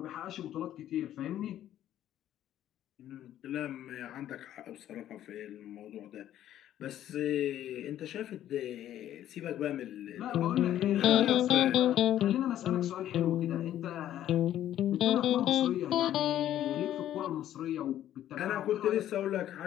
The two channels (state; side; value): quieter; right; 11.9 dB